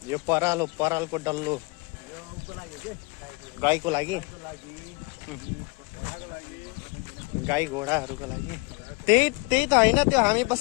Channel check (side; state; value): right; quieter; 28.5 dB